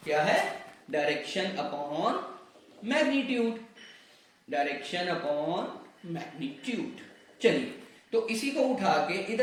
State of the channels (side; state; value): both; identical; correlation 1.00